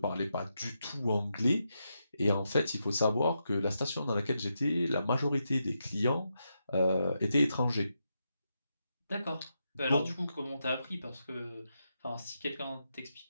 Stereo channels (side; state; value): both; inverted; correlation -0.85